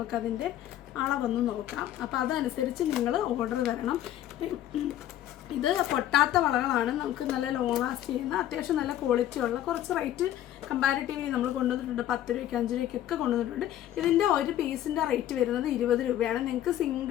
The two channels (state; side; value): quieter; right; 12.3 dB